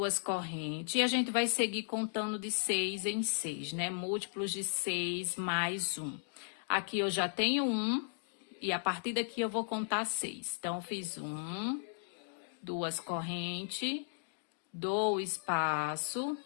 correntes e a gente vai seguir contando de 6 em 6, né? Múltiplos de 6 mais 1. Aqui eu já tenho 1 e a partir daqui eu vou contar 6. Então, eu fiz 1, 2 correntes, dou o espaço,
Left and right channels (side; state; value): right; silent; digital silence